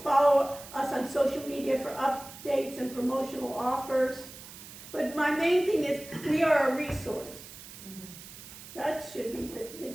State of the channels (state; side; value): noise; right; hiss, 15 dB below the sound